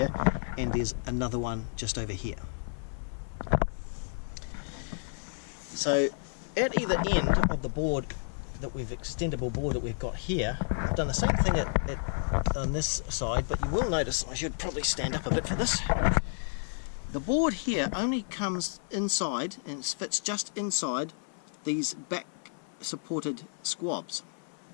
and there's another one just over here. So at either end of the board that we've extendable board that we've got here, I've done the same thing on this side, but you will notice, I should probably stand up a bit for this, the board here only comes inside and fits just inside these back supported squabs.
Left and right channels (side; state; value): right; silent; 55 dB below the other